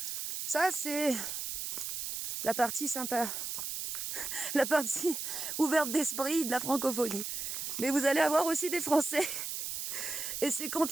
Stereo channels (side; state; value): right; noise; hiss, 4 dB below the sound